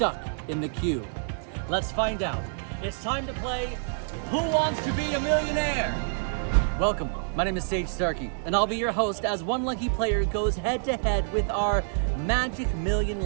in the queue? Let's find out. It's time to play Who Wants to Be a Millionaire? Welcome, my name is Sage Starkey, and I'll be your host as one lucky player goes head to head with our Magic Million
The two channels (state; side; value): silent; left; digital silence